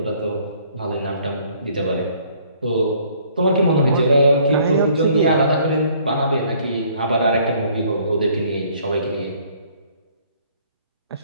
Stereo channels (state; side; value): inverted; both; correlation -0.60